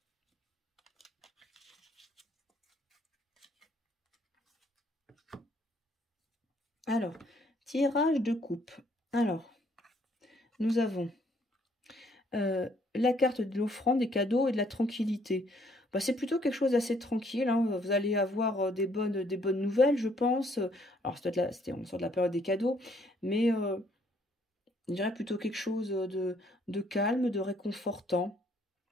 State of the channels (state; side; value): normal; both; correlation 0.66